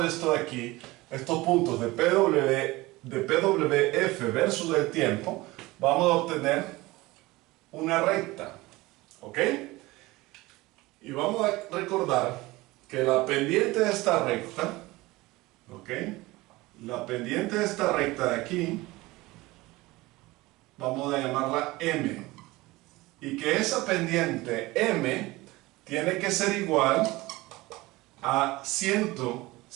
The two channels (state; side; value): quieter; left; 20.4 dB